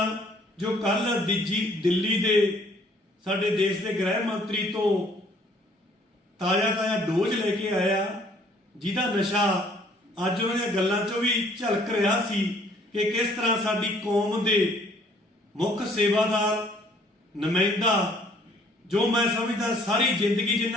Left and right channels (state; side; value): normal; both; correlation 0.60